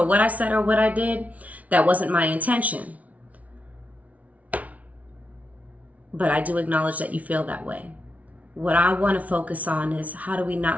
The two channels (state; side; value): late; left; 0.069 ms